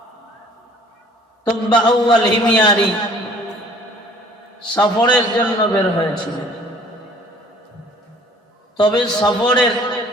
তুব্বা আউয়াল হিমিয়ারি সফরের জন্য বের হয়েছিল, তবে সফরের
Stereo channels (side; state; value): both; normal; correlation 0.53